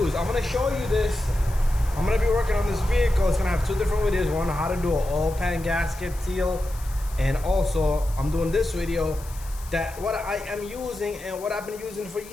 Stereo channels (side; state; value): left; noise; hiss, 19 dB below the sound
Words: I'm going to show you this. I'm going to be working on this vehicle. It's going to have two different videos. One on how to do an oil pan gasket seal, and also I'm doing this video that what I am using and what I've been using for